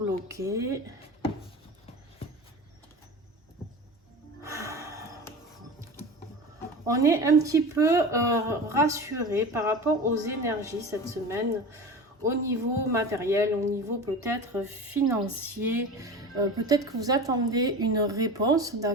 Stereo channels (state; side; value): normal; both; correlation 0.31